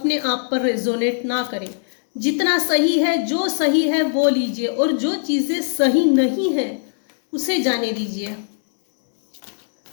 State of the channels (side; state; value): right; silent; 66 dB below the other